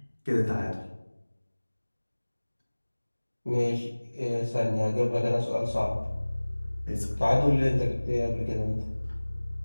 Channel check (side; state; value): both; inverted; correlation -1.00